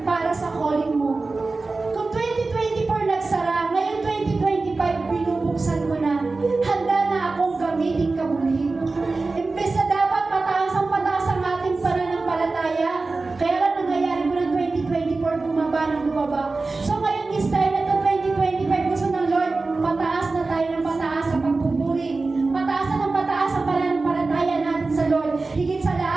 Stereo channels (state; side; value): quieter; left; 3.6 dB